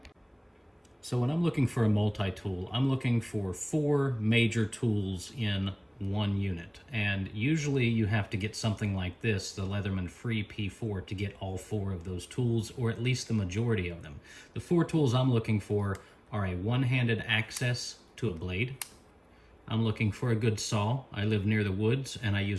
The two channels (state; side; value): identical; both; correlation 1.00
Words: So when I'm looking for a multi-tool, I'm looking for 4 major tools in one unit. And usually you have to get something like this, the Leatherman Free P4, to get all 4 of those tools, or at least the majority of them. The 4 tools I'm looking for are a one-handed access to a blade. I'm looking for a good saw. I live near the woods and I